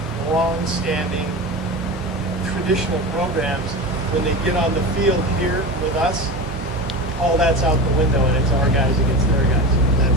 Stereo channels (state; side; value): normal; both; correlation 0.27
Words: long-standing traditional programs, when they get on the field here with us, all that's out the window, and it's our guys against their guys.